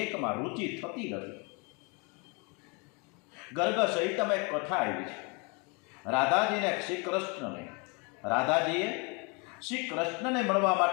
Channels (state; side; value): quieter; right; 31.7 dB